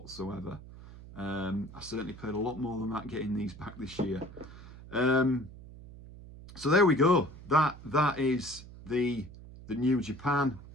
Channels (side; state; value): right; noise; hum, 17 dB below the sound